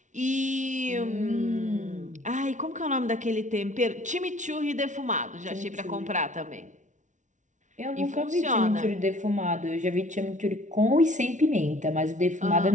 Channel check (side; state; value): left; late; 0.36 ms